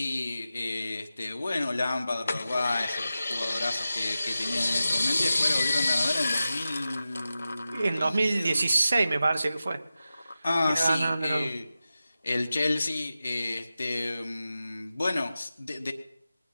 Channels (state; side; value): inverted; both; correlation -0.93